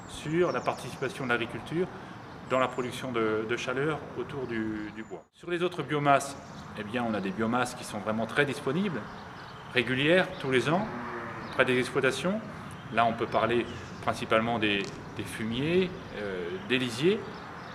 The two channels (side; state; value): both; identical; correlation 1.00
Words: sur la participation de l'agriculture dans la production de chaleur autour du bois. Sur les autres biomasses, eh bien, on a des biomasses qui sont vraiment très disponibles, régulières, tous les ans, près des exploitations. Là, on peut parler principalement des fumiers, des lisiers.